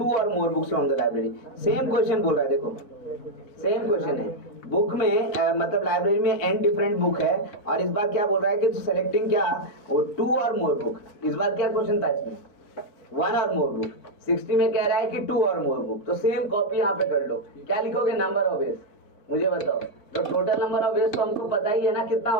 or more books from the library. Same question बोल रहा है, देखो सेम क्वेश्चन है। बुक में मतलब लाइब्रेरी में n डिफरेंट बुक है, और इस बार क्या बोल रहा है कि सेलेक्टिंग क्या? वो 2 और मोर बुक। इस बार क्या क्वेश्चन था इसमें? 1 और मोर बुक। 60 में कह रहा है कि 2 और मोर बुक, तो सेम कॉपी यहाँ पे कर लो। क्या लिखोगे? नंबर ऑफ वेज, मुझे बताओ। तो टोटल नंबर ऑफ वेज तो हमको पता ही है ना कितना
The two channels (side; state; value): right; late; 4.0 ms